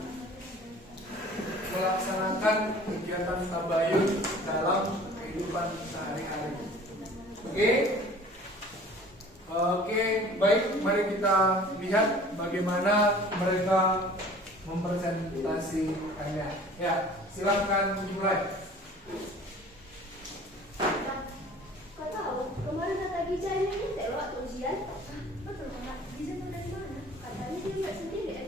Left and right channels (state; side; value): normal; both; correlation 0.47